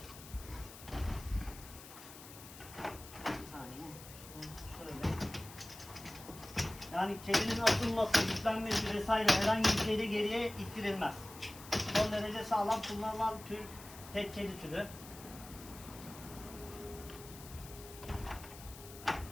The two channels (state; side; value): noise; left; hiss, 16 dB below the sound